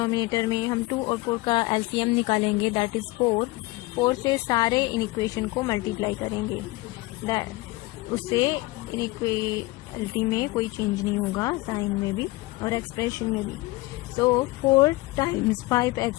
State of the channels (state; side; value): quieter; right; 20.9 dB